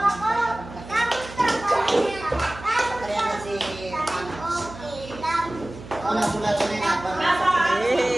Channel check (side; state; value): right; noise; hum, 15 dB below the sound